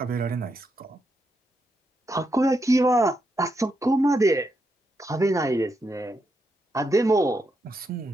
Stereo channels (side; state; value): both; normal; correlation 0.82